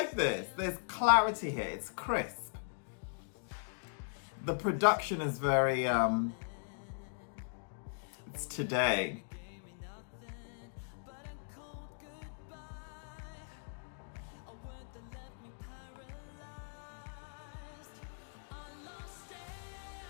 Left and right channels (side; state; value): right; silent; digital silence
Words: this. There's clarity here. It's crisp. The production is very, it's today.